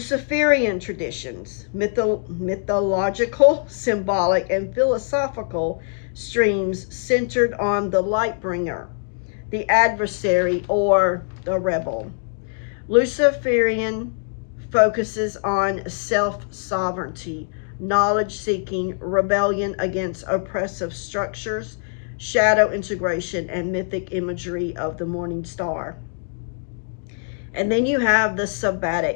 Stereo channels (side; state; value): right; silent; digital silence